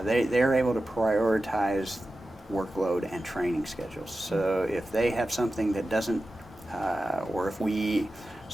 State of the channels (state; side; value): normal; both; correlation 0.94